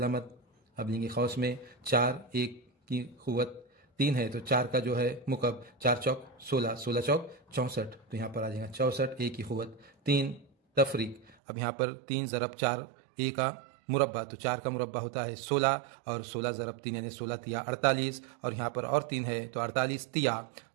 अब लेंगे खौस में 4 1 की कुव्वत 3 है तो 4 का जो है मुकब 4 चौक 16, 16 चौक 64, तो यहाँ पर आ जाएगा 64 a की कुव्वत 3 तफरीक। अब यहाँ पर 3 ज़रब 4 a का मुरब्बा, तो 4 का मुरब्बा होता है 16 और 16 ज़रब 3 यानी 16 तिया 48 और यहाँ पर और 3 है तो 48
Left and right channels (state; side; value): drops out; left; at 11.4 s